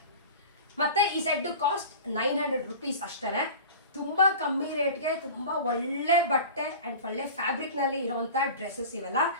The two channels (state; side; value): inverted; both; correlation -0.37